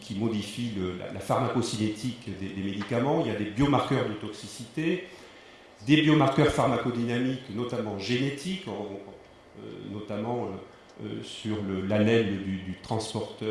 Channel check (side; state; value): both; identical; correlation 1.00